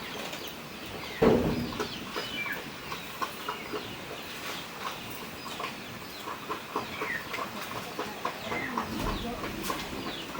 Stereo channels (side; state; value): both; identical; correlation 1.00